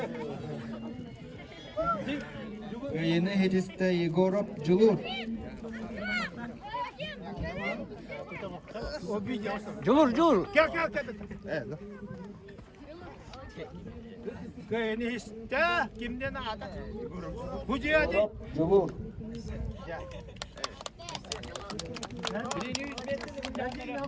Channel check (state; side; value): identical; both; correlation 1.00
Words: Yeni Hediste Igorov Julur. O bir yasa. Julur. Gel. Evet. Kayını iste kimden ada? Hucu hadi. Julur.